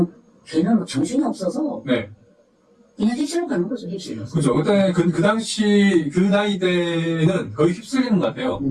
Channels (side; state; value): both; identical; correlation 1.00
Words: 걔는 뭐 정신이 없어서 네. 그냥 휩쓸려 가는 거죠, 휩쓸려. 그죠. 그때 그 당시, 그 나이 때는 거의 휩쓸리는 것 같아요.